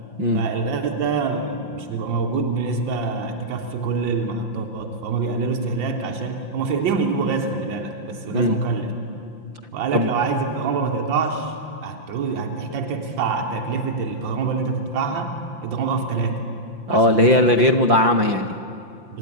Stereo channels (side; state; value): left; late; 5.8 ms